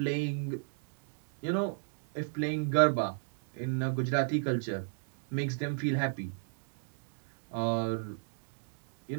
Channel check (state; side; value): silent; left; digital silence